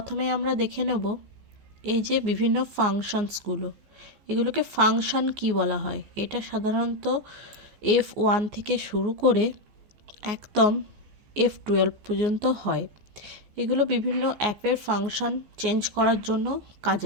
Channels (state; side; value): late; left; 14 ms